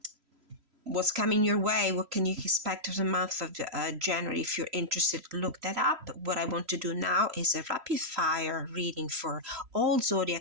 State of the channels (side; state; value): left; late; 3.0 ms